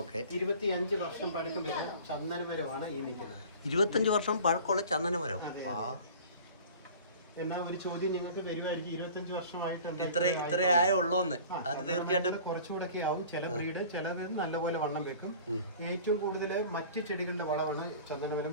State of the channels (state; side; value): inverted; both; correlation -0.43